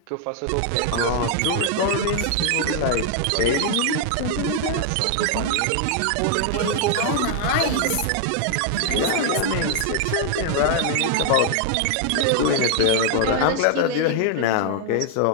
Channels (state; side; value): different; both; correlation 0.00